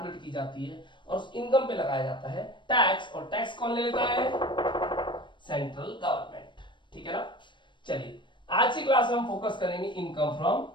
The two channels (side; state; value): right; late; 0.23 ms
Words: की जाती है और उस इनकम पे लगाया जाता है टैक्स। और टैक्स कौन ले लेता है? Central government. ठीक है ना? चलिए आज की क्लास में हम फोकस करेंगे इनकम फ्रॉम